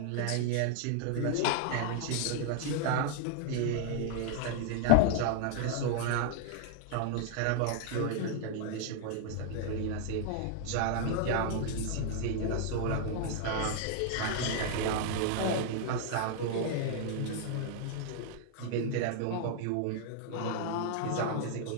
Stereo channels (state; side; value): different; both; correlation -0.01